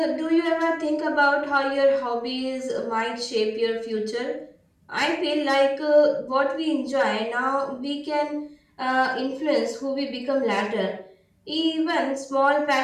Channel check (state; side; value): identical; both; correlation 1.00